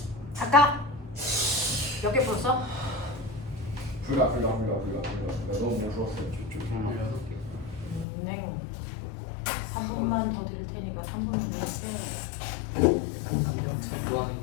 아까 몇 개 풀었어? 불가 너무 무서웠어요. 네. 3분만 더 드릴 테니까 3분은 더 했어요. 뭐 하는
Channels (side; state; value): right; drops out; at 8.1 s